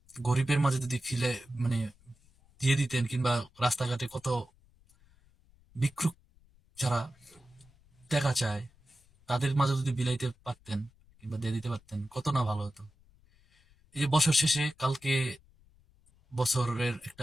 গরিবের মাঝে যদি ফিলে মানে দিয়ে দিতেন, কিংবা রাস্তাঘাটে কত ভিক্ষুক যারা টাকা চায় তাদের মাঝে যদি বিলাইতে পারতেন কিংবা দিয়ে দিতে পারতেন, কত না ভালো হতো। এই যে বছর শেষে কালকে বছরের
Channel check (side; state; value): left; noise; rumble, 30 dB below the sound